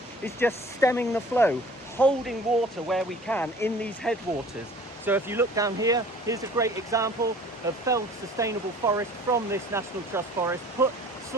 it's just stemming the flow, holding water where we can in these headwaters. So if you look down here, here's a great example of felled sustainable forest from this National Trust forest, put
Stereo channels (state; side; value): normal; both; correlation 0.48